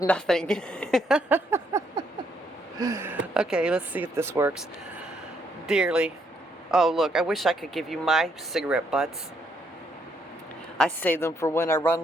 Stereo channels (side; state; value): both; normal; correlation 0.72